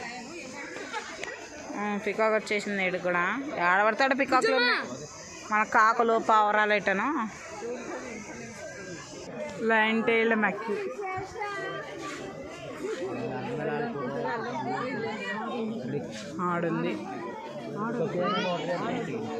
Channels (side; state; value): both; identical; correlation 1.00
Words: peacock వచ్చేసింది ఇటు కూడా ఆడబడతాడు పికాక్లో మన కాకులు పావురాలు ఎట్టను లయన్ టైల్ మ్యాక్యూ ఆడుంది